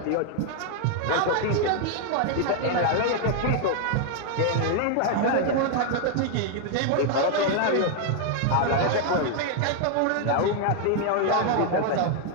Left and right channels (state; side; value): different; both; correlation 0.00